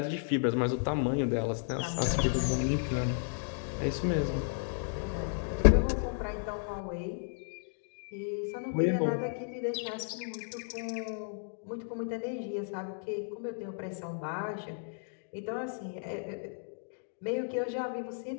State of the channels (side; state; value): right; silent; digital silence